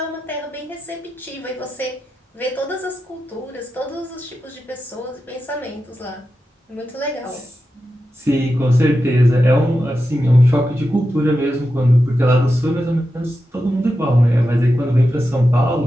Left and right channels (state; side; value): normal; both; correlation 0.90